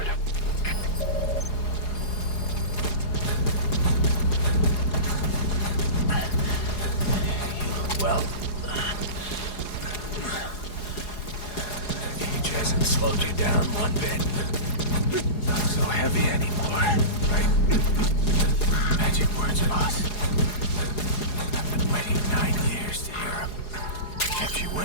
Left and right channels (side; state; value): right; late; 4.8 ms